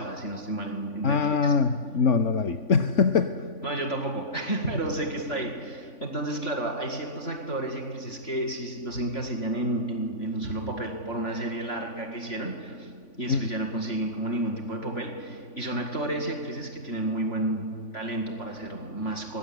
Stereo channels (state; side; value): late; right; 3.5 ms